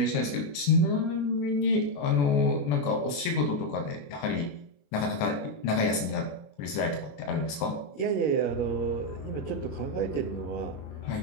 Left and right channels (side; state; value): right; late; 21 ms